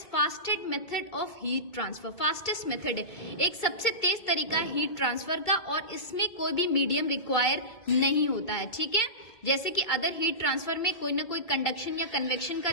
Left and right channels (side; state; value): right; late; 2.3 ms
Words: fastest method of heat transfer. Fastest method है, एक सबसे तेज तरीका है हीट ट्रांसफर का, और इसमें कोई भी मीडियम रिक्वायर नहीं होता है. ठीक है, जैसे कि अदर हीट ट्रांसफर में कोई ना कोई कंडक्शन या कन्वेक्शन का